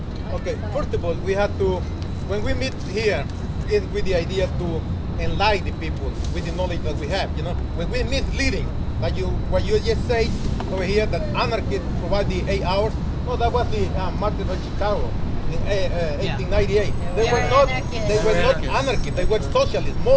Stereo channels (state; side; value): identical; both; correlation 1.00